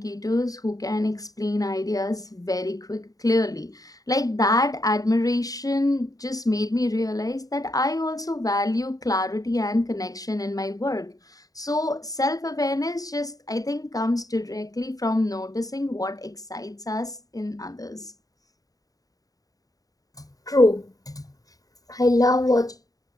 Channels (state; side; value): late; right; 0.18 ms